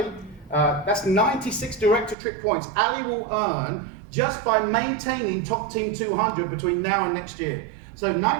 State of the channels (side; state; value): left; drops out; at 2.1 s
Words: That's 96 direct-to-trip points Ali will earn just by maintaining top team 200 between now and next year. So